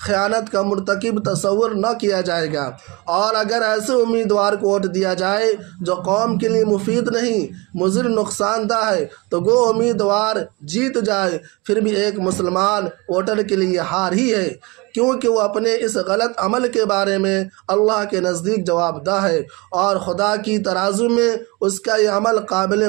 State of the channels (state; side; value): quieter; left; 25.6 dB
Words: خیانت کا مرتکب تصور نہ کیا جائے گا۔ اور اگر ایسے امیدوار کو ووٹ دیا جائے جو قوم کے لیے مفید نہیں، مضر نقصان دہ ہے، تو وہ امیدوار جیت جائے پھر بھی ایک مسلمان ووٹر کے لیے ہار ہی ہے، کیونکہ وہ اپنے اس غلط عمل کے بارے میں اللہ کے نزدیک جواب دہ ہے اور خدا کی ترازو میں اس کا یہ عمل قابل